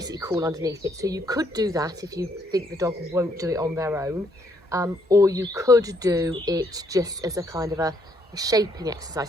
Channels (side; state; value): both; normal; correlation 0.71